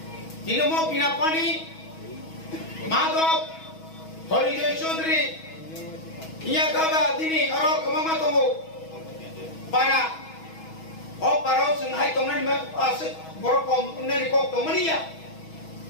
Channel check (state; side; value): late; right; 6.2 ms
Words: দিনমো বিনা পানি माधव हरिजय चौधरी इया गाबा दिनै अर कमामा दङ पारा अ पाराव जों हाय दंनानि मा आसे बर कम उन्ननि कक दमनिया